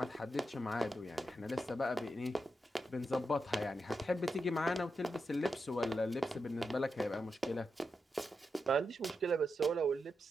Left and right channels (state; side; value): normal; both; correlation 0.87